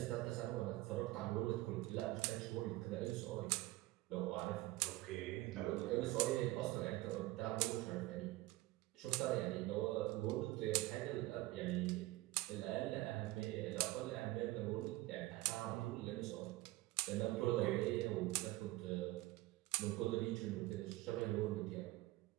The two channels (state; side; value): quieter; left; 18.6 dB